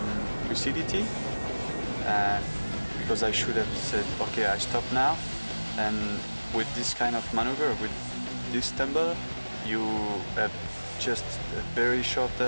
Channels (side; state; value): both; inverted; correlation -1.00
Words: lucidity, because I should have said, okay, I stop now. And with this kind of maneuver, with this tumble, you have just a very short